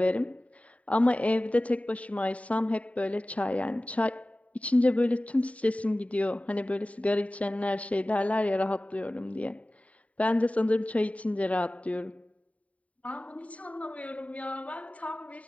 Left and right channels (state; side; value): late; right; 0.067 ms